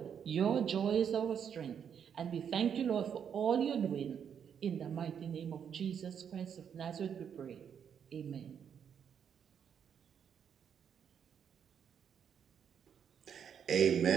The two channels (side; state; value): left; quieter; 7.9 dB